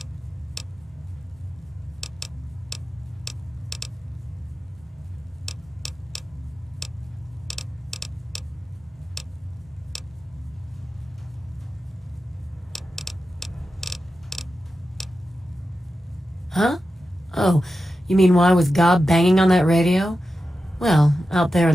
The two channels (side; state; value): both; normal; correlation 0.91